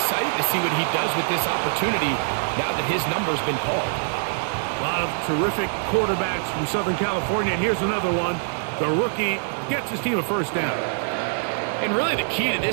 to see what he does with this opportunity now that his number's been called. A lot of terrific quarterbacks from Southern California, and here's another one. The rookie gets his team a first down. And really the key to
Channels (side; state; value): left; silent; digital silence